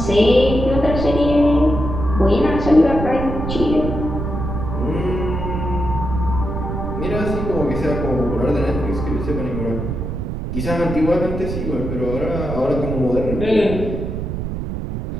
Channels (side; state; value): right; noise; rumble, 4 dB below the sound